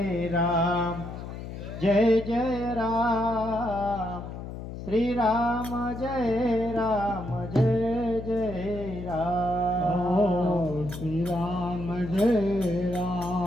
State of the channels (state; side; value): noise; left; hum, 9 dB below the sound